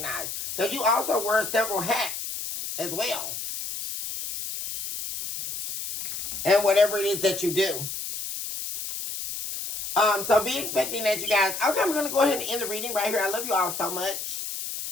Because you also wear several hats as well. And whatever it is that you do. So be expecting that, you guys. Okay, I'm going to go ahead and end the reading right here. I love you all so much.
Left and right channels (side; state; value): left; noise; hiss, 5 dB below the sound